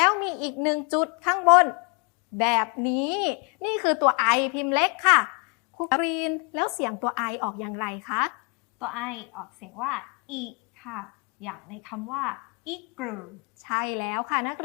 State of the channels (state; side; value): quieter; right; 33.5 dB